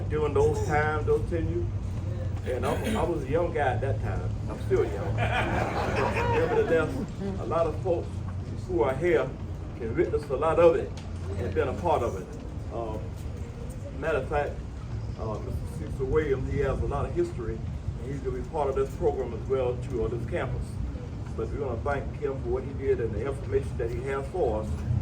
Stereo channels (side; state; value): both; identical; correlation 1.00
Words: during those times, those tenures. And I was a young guy at that time. I'm still young. But nevertheless, a lot of folks who are here can witness a lot of it and been a part of it. Matter of fact, Mr. Cecil Williams, he has a lot of history, and he's going to be part of this program as well too, on this campus. But we're going to thank him for what he did and the information that he has for us